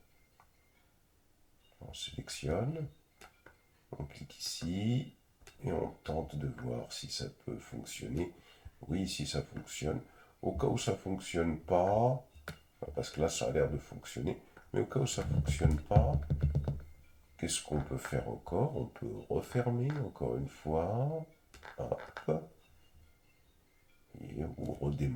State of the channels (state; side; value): identical; both; correlation 1.00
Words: On sélectionne, on clique ici et on tente de voir si ça peut fonctionner. Oui, si ça fonctionne. Au cas où ça ne fonctionne pas, parce que là ça a l'air de fonctionner, mais au cas où ça ne fonctionne pas, qu'est-ce qu'on peut faire encore? On peut refermer encore une fois. Hop. Et, ou